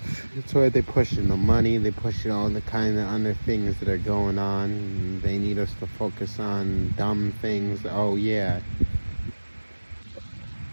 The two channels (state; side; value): inverted; both; correlation -1.00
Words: That's why they're pushing the money, they're pushing all the kind of other things that are going on. They need us to focus on dumb things. Oh yeah,